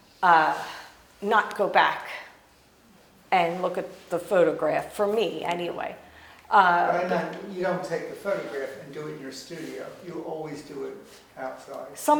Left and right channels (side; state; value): both; identical; correlation 1.00